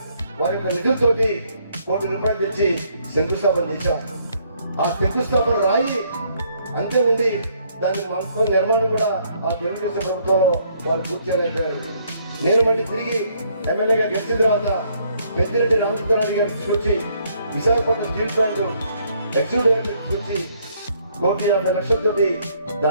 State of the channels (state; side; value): inverted; both; correlation -0.68